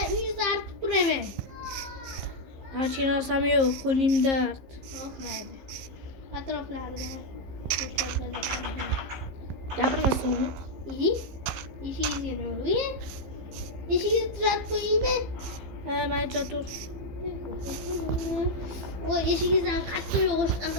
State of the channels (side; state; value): left; late; 15 ms